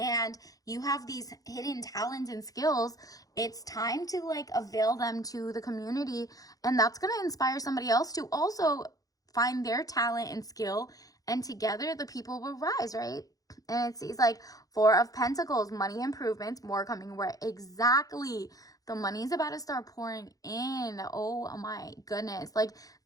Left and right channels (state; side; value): late; right; 0.17 ms